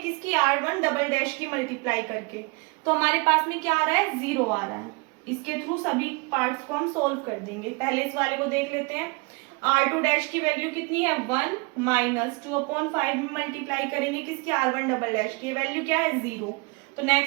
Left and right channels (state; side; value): quieter; left; 29.4 dB